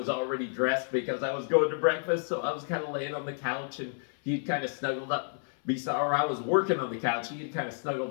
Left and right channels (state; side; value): silent; right; 58 dB below the other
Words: already dressed because I was going to breakfast, so I was kind of laying on the couch, and he'd kind of snuggled up or I was working on the couch. He had kind of